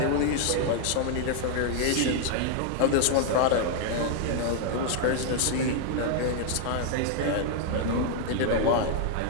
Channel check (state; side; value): different; both; correlation 0.00